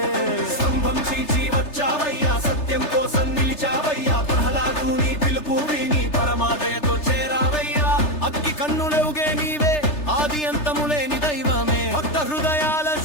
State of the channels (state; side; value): late; right; 3.3 ms